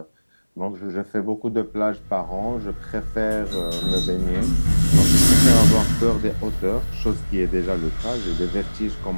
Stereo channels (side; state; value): both; inverted; correlation -1.00